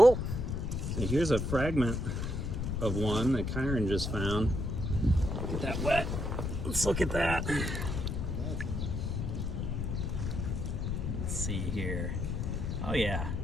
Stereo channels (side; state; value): left; noise; rumble, 1 dB below the sound